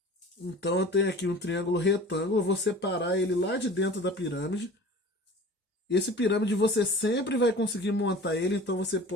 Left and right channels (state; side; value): normal; both; correlation 0.41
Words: Então eu tenho aqui um triângulo retângulo, eu vou separar ele lá de dentro da pirâmide. Esse pirâmide você sempre vai conseguir montar ele, então você